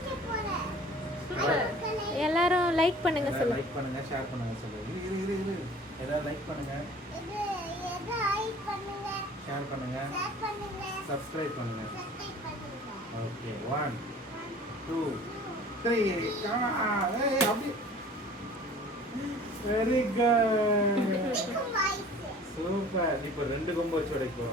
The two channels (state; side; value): normal; both; correlation 0.47